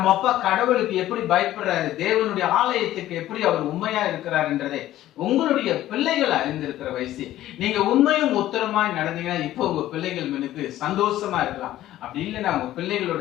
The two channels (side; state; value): right; quieter; 13.9 dB